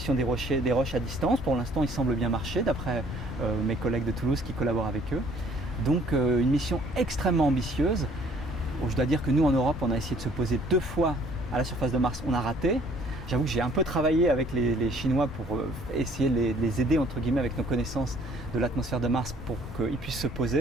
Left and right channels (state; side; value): normal; both; correlation 0.58